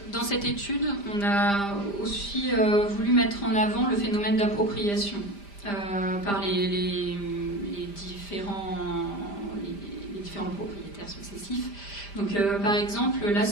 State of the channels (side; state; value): right; late; 5.0 ms